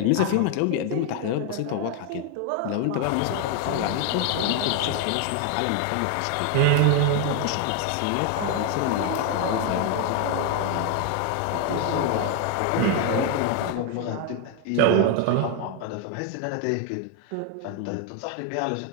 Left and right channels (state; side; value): different; both; correlation 0.01